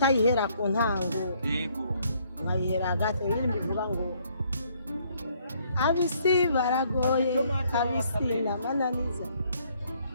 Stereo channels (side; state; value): both; inverted; correlation -0.66